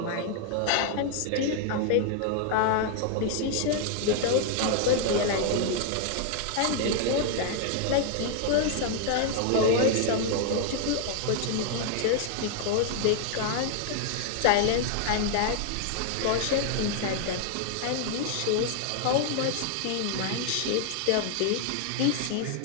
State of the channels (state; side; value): different; both; correlation 0.00